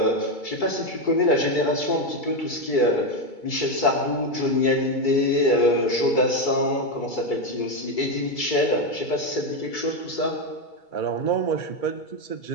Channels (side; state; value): right; late; 2.3 ms